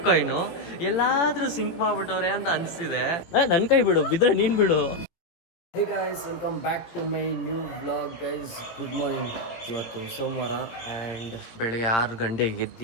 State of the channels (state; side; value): late; right; 18 ms